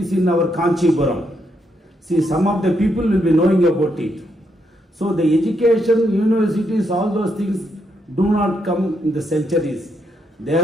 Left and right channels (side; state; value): both; normal; correlation 0.79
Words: in our Kanchipuram. See, some of the people will be knowing about it. So the education, universities, all those things do not come in the centuries. They